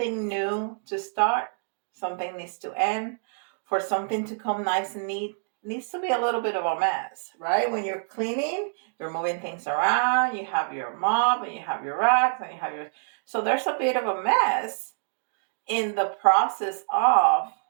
new to start, something needs to end. For something to come nice and neat, it needs to be a little bit of a mess, right? When you're cleaning, you're moving things around, you have your mop and you have your racks and you have your. So there's a bit of a mess in the process of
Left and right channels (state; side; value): silent; left; digital silence